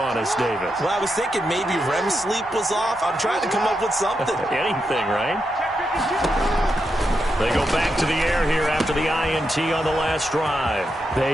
us, David. Well, I was thinking maybe REM sleep was off. I'm trying to come up with something. Anything, right? They go back to the air here after the INT on the last drive.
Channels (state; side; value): normal; both; correlation 0.85